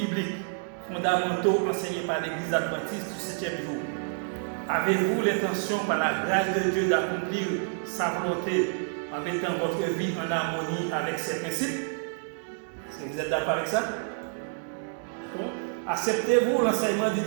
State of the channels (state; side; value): silent; left; 59 dB below the other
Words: fondamentaux enseignés par l'Église adventiste du 7e jour? Avez-vous l'intention, par la grâce de Dieu, d'accomplir sa volonté en mettant votre vie en harmonie avec ses principes? Est-ce que vous êtes d'accord avec ça? Acceptez-vous l'enseignement du